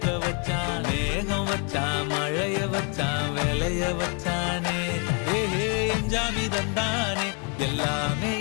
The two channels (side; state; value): right; quieter; 34.2 dB